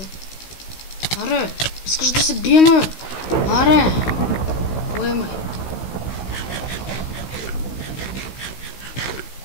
Аре, искаш да се биеме, бе? Аре! Поемай.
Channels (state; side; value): late; right; 16 ms